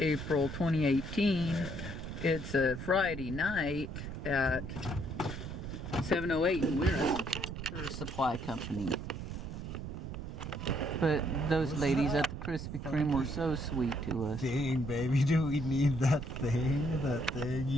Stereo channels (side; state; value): right; noise; rumble, 7 dB below the sound